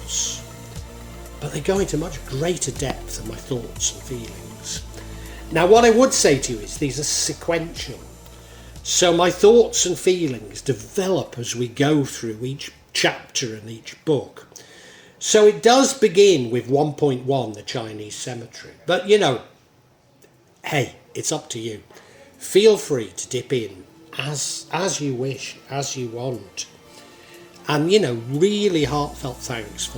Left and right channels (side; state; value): both; identical; correlation 1.00